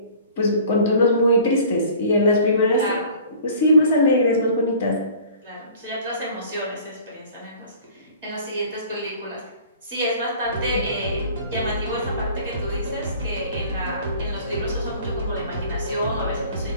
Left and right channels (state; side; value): inverted; both; correlation -0.47